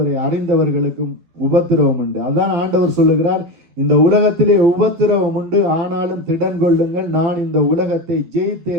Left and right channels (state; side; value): late; left; 12 ms